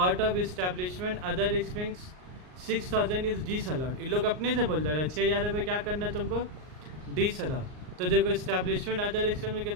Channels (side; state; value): left; late; 39 ms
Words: of establishment other expense 6,000 is disallowed, इन लोग अपने से बोल रहे हैं 6,000 रुपये क्या करना है तुमको, डिस अलाउ। तो देखो इस्टेब्लिशमेंट अदर एक्सपेंस में